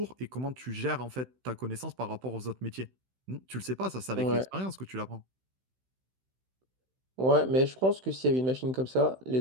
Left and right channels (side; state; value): left; late; 16 ms